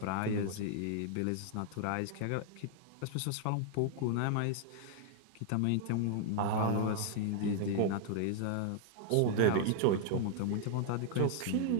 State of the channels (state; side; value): different; both; correlation 0.00